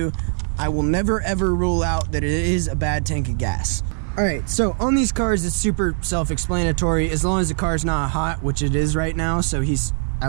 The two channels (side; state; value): left; silent; digital silence